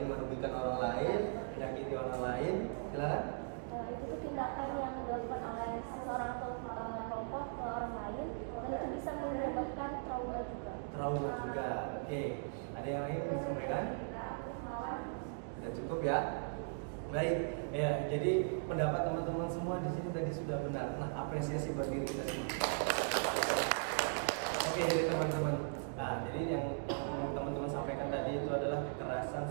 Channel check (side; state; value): left; silent; digital silence